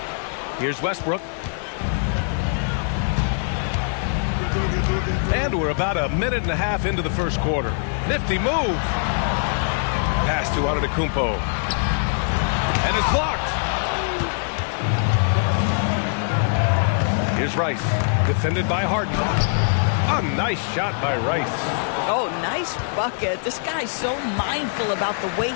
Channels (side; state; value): right; silent; digital silence